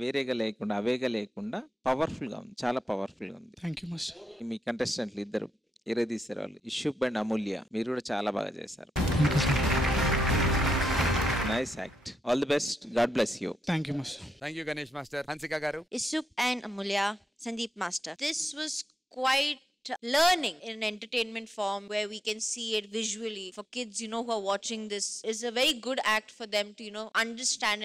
వేరేగా లేకుండా అవేగా లేకుండా పవర్ఫుల్గా ఉంది, చాలా పవర్ఫుల్గా ఉంది. Thank you master. మీ కంటెస్టెంట్లు ఇద్దరు తీశారు వాళ్ళు, ఇషుబ్ అండ్ అమూల్య, మీరు కూడా చాలా బాగా చేశారు. Nice act. All the best. God bless you. Thank you master. Thank you Ganesh master. Hansika గారు. Isup and Amulya, Sandeep Master. This was quite learning in entertainment form where we can see it visually for kids, who are watching this. Is a very good act for them to,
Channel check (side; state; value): both; normal; correlation 0.85